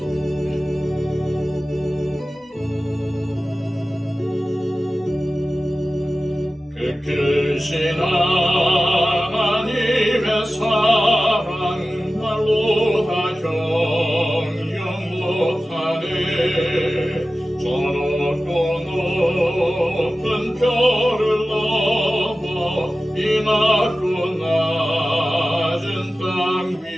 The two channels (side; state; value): both; normal; correlation 0.95